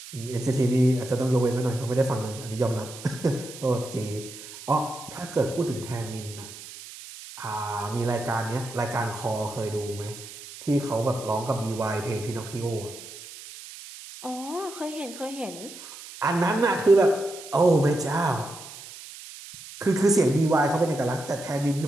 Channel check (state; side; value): noise; right; hiss, 14 dB below the sound